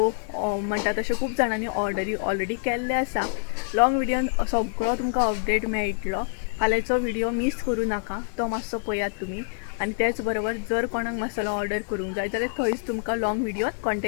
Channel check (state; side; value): silent; right; 61 dB below the other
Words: म्हणटा तशें खूब जाणांनी ऑर्डरी ऑलरेडी केल्ले आसा. लॉंग व्हिडियोन सगळो तुमकां अपडेट मेळटलो. फाल्यांचो व्हिडिओ मिस करूं नाका तो मातसो पळयात तुमी. आनी त्याच बरोबर जर कोणाक मसालो ऑर्डर करूंक जाय जाल्यार थंयच तुमकां लॉंग व्हिडियोन